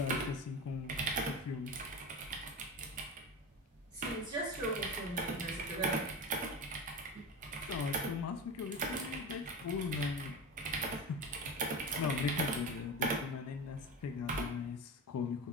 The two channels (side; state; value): both; normal; correlation 0.25